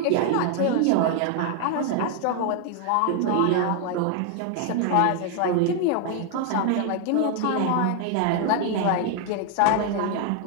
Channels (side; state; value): both; different; correlation 0.00